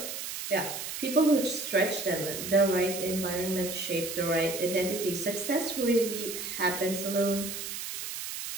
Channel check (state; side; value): noise; right; hiss, 6 dB below the sound